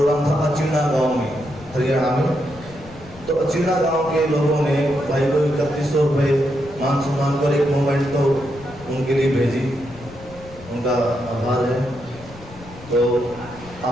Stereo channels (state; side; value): noise; left; rumble, 19 dB below the sound